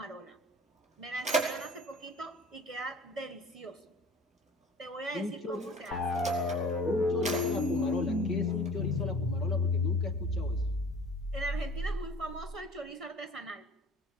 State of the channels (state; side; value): normal; both; correlation 0.46